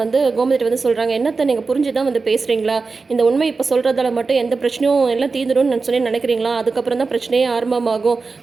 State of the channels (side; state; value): left; quieter; 4.3 dB